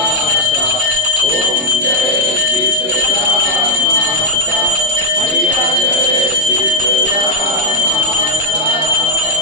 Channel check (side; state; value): both; normal; correlation -0.06